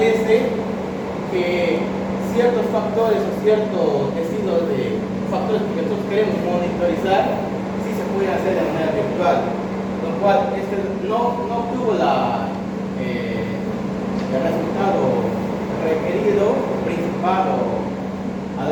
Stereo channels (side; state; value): both; identical; correlation 1.00